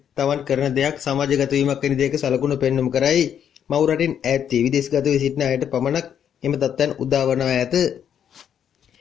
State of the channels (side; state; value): right; quieter; 8.9 dB